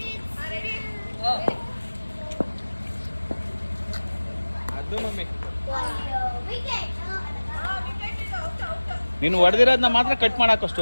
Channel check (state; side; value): inverted; both; correlation -1.00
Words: ಅದು ಮಮ್ಮಿ ನೀನು ಹೊಡೆದಿರೋದನ್ನ ಮಾತ್ರ ಕಟ್ ಮಾಡಾಕೋ